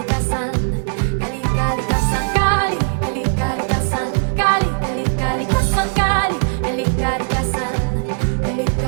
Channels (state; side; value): silent; left; digital silence